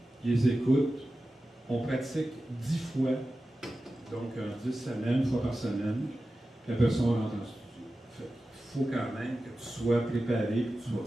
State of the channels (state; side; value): normal; both; correlation 0.94